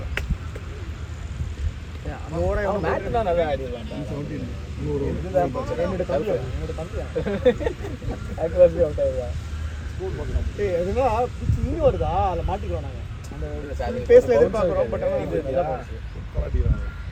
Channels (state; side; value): identical; both; correlation 1.00